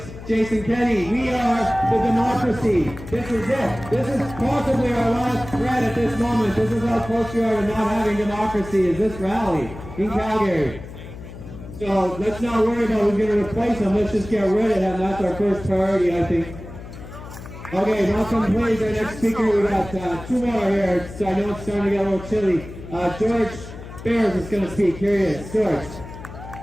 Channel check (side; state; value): left; noise; hum, 13 dB below the sound